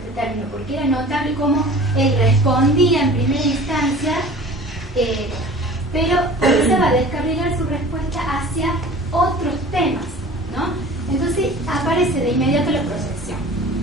término porque era notable cómo él respondía en primera instancia, pero comenzaba a descarrilar su respuesta hacia otros temas, ¿no? Entonces aparece de inmediato la proyección.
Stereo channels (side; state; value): both; normal; correlation 0.43